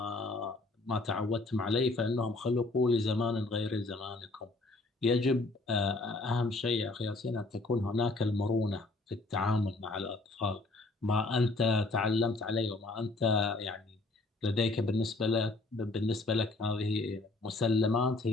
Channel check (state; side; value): quieter; right; 3.1 dB